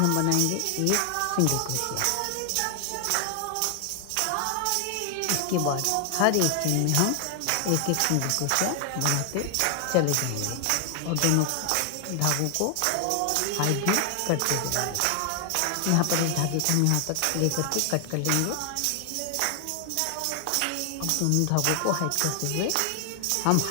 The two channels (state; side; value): different; both; correlation 0.00